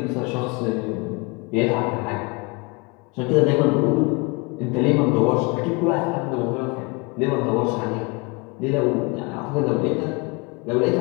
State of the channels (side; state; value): right; quieter; 27.8 dB